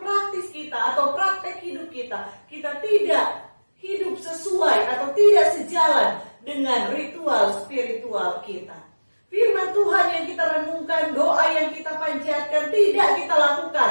kita atau praktek hidup kita, kita tidak hidup sesuai atau tidak sejalan dengan ritual spiritual kita. Firman Tuhan yang kita renungkan, doa yang kita panjatkan tidak kita lakukan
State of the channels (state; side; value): inverted; both; correlation -1.00